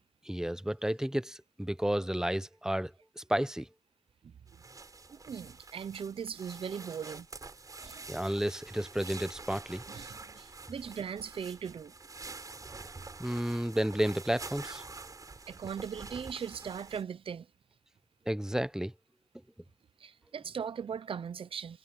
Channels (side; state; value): both; normal; correlation 0.89